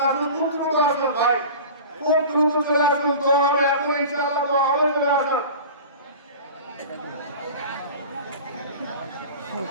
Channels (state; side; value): inverted; both; correlation -0.36